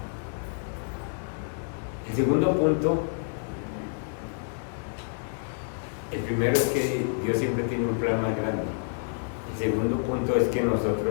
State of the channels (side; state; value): right; silent; 59 dB below the other